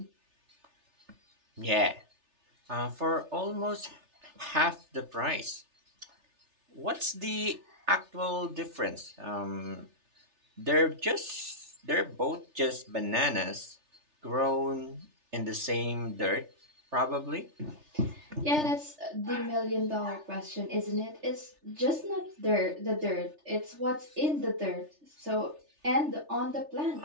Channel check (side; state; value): left; late; 3.3 ms